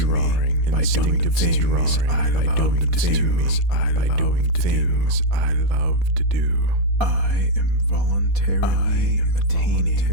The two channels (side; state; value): left; late; 4.2 ms